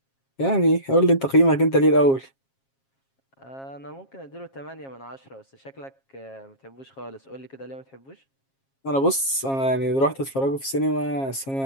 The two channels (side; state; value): right; late; 7.4 ms